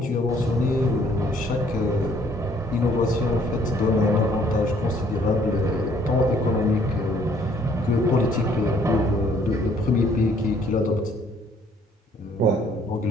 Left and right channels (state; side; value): normal; both; correlation 0.62